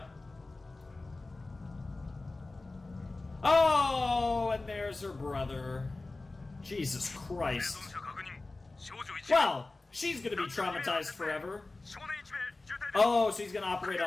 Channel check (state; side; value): quieter; right; 3.3 dB